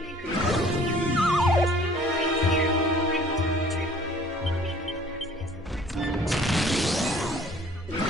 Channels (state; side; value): normal; both; correlation 0.53